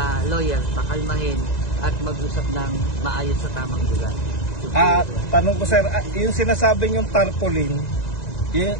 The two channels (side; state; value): right; late; 1.9 ms